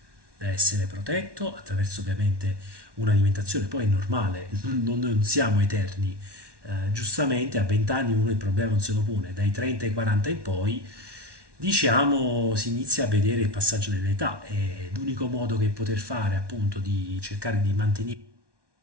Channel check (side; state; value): left; late; 1.1 ms